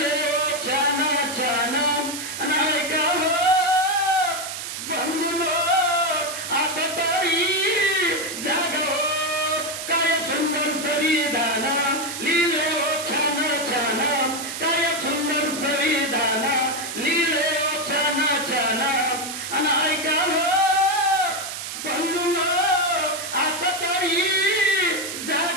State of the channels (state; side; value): noise; right; hiss, 7 dB below the sound